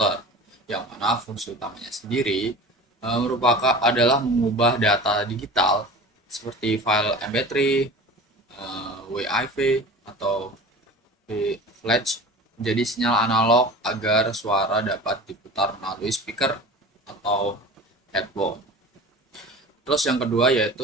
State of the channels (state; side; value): normal; both; correlation 0.37